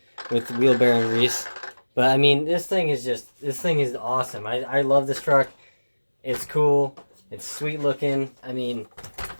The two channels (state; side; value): inverted; both; correlation -1.00